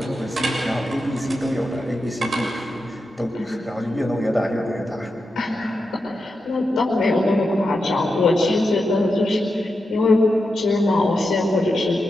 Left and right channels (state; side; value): normal; both; correlation 0.88